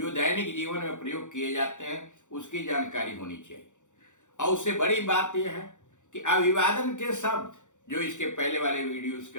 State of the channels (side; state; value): right; late; 0.85 ms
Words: दैनिक जीवन में प्रयोग किए जाते हैं, उसकी जानकारी होनी चाहिए। और उससे बड़ी बात यह है कि अभिवादन के शब्द जो इसके पहले वाले वीडियोस के